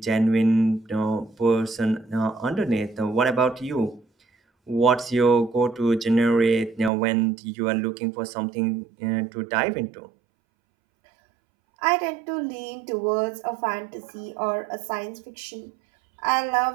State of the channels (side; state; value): left; drops out; at 6.9 s